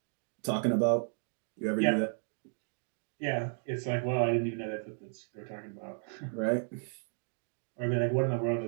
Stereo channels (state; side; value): silent; left; 55 dB below the other